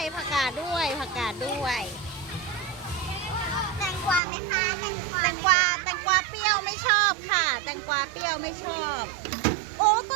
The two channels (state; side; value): drops out; left; at 4.2 s